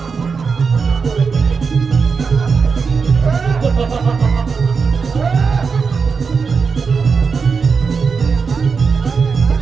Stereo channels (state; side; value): quieter; left; 5.3 dB